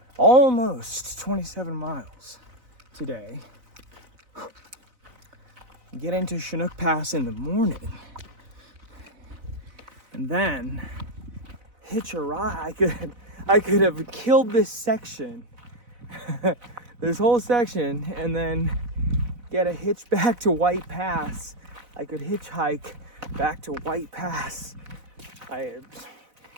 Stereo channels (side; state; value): left; late; 4.0 ms